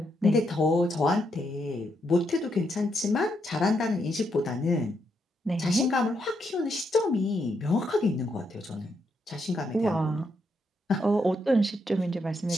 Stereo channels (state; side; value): normal; both; correlation 0.79